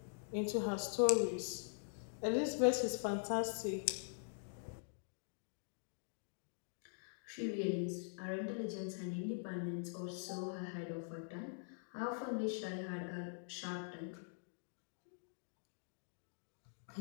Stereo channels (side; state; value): right; silent; digital silence